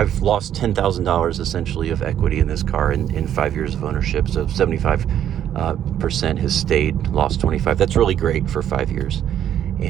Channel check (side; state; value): left; quieter; 10.4 dB